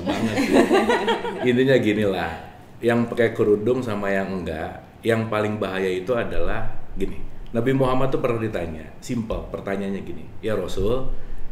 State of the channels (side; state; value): both; identical; correlation 1.00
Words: Intinya gini lah, yang pakai kerudung sama yang enggak, yang paling bahaya itu adalah gini. Nabi Muhammad tuh pernah ditanya, simple pertanyaannya gini, ya Rasul,